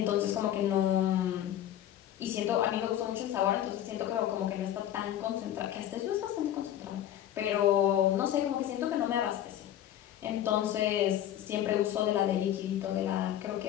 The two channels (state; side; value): quieter; right; 11.6 dB